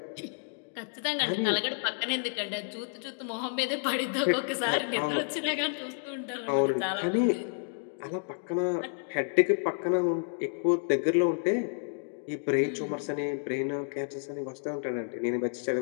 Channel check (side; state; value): right; silent; digital silence